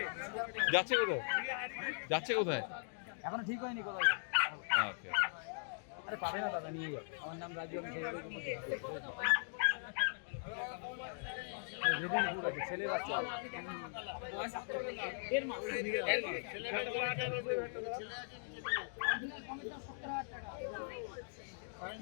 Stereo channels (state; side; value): silent; right; digital silence